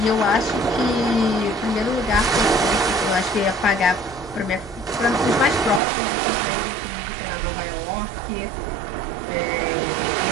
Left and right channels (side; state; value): left; drops out; at 5.8 s